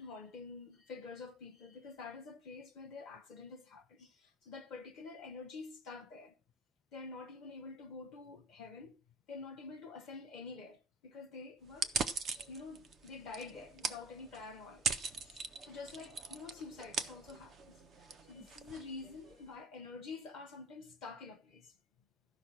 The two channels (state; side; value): normal; both; correlation 0.43